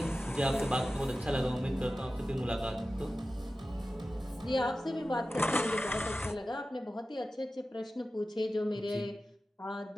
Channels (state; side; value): normal; both; correlation 0.94